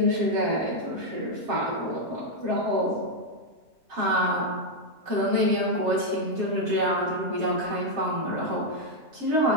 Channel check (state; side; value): late; left; 7.4 ms